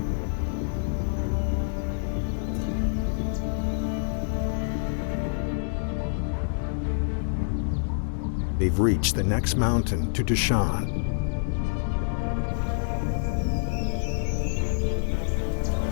They've reached the next mountain to Dushan.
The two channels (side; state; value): right; silent; digital silence